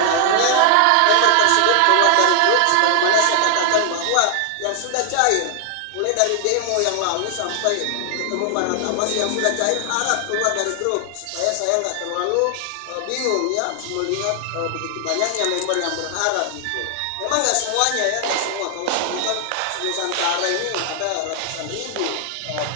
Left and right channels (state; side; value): different; both; correlation 0.00